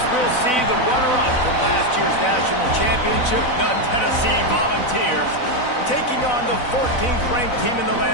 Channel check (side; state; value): right; late; 4.0 ms